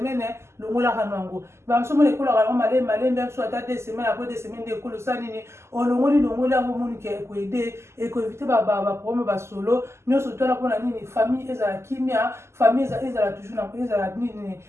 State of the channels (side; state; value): left; late; 0.13 ms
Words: longolaka nango bamosu omoni ekolaka yango malembe mosu ata 2 semaines après 2 semaines nde ekolo osala nini olongoli yango omoni ke ekoede ekoevite baproblème basolo nyonso twana mpona nini famille ezala kimia famille ezala toujours ezala nini